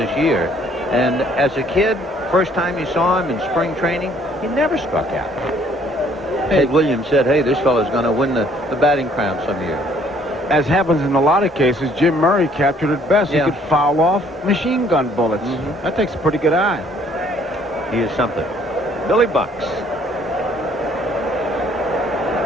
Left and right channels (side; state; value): both; normal; correlation 0.61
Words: year. And as a kid, first time you saw him in spring training, he never struck out. Ted Williams said, hey, this fellow's going to win the batting crown some year. As happens in a lot of cases, Jim Murray captured it best. Yeah. He could foul off machine gun bullets. That takes a pretty good eye. He is something. Billy Bucks.